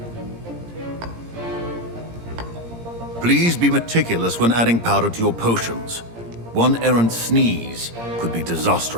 Please be meticulous when adding powder to your potions. One errant sneeze could be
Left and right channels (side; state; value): left; late; 17 ms